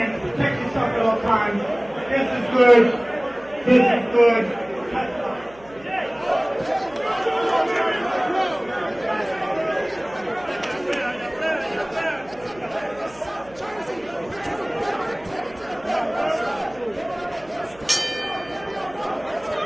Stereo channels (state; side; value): noise; right; hum, 24 dB below the sound